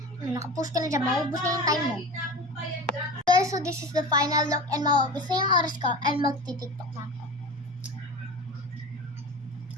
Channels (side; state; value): both; normal; correlation 0.31